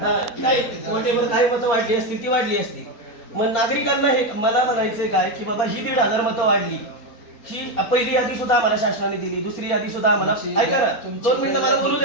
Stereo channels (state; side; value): late; right; 4.3 ms